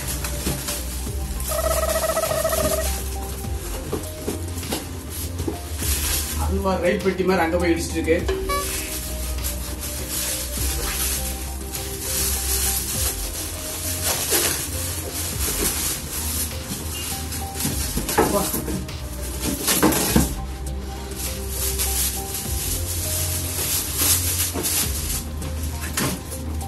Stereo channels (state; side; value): identical; both; correlation 1.00